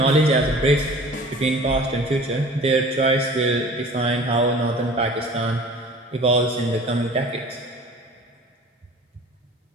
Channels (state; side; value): normal; both; correlation 0.44